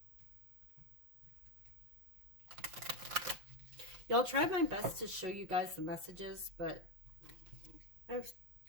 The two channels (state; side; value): late; left; 5.8 ms